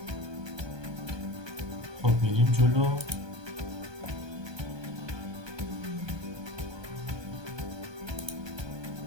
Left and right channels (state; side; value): late; left; 1.2 ms